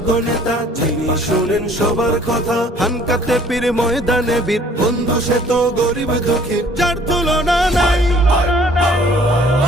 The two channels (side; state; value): both; normal; correlation 0.56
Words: নেতা, যিনি শুনেন সবার কথা। হানকাতে পীর ময়দানে বীর, বন্ধু সে তো গরিব দুঃখীর, যার তুলনা নাই।